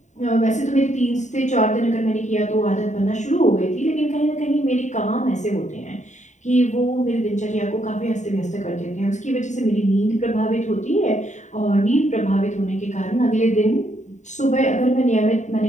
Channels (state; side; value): late; right; 0.34 ms